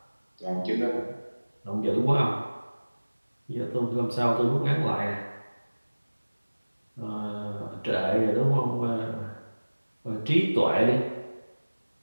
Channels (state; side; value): inverted; both; correlation -1.00